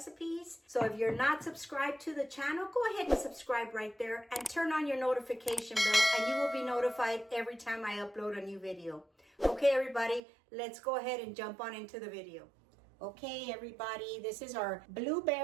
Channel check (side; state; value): left; drops out; at 10.2 s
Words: So if you're not subscribed to the channel, go ahead and subscribe right there and turn on your notification bell and you will be notified every time I upload a new video. Okay, everybody, let's go ahead and jump on into the video. Okay, everybody, this is our